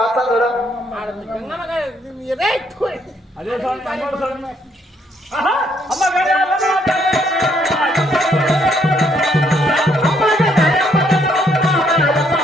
అదే స్వామి అమ్మోరు స్వామి. అమ్మ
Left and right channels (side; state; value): both; normal; correlation 0.70